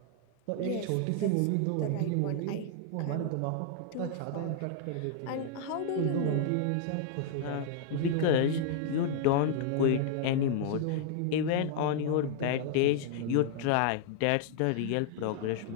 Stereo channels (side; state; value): both; different; correlation -0.01